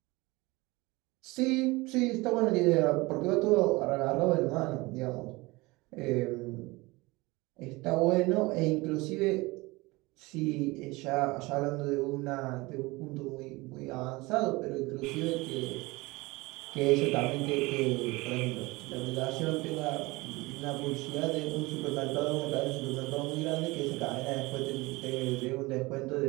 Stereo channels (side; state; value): left; quieter; 22.7 dB